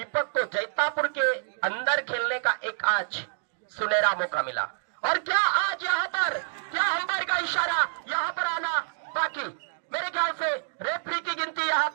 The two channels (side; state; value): left; silent; digital silence